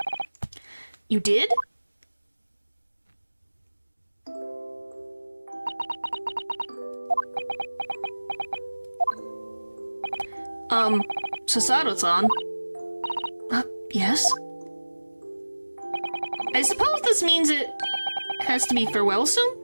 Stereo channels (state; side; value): inverted; both; correlation -1.00